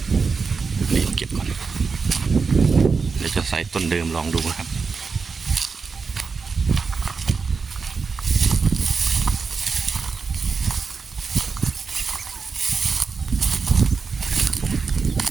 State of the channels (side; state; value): left; quieter; 5.0 dB